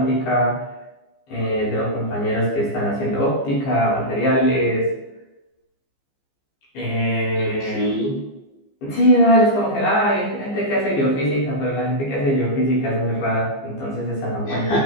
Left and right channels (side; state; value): right; late; 15 ms